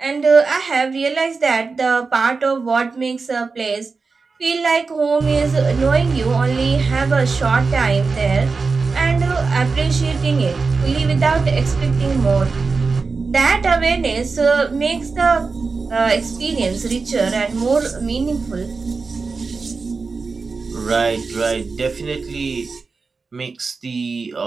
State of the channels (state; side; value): quieter; left; 4.4 dB